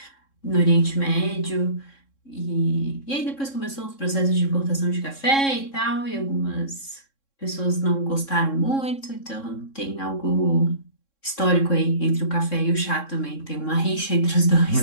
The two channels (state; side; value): late; right; 3.6 ms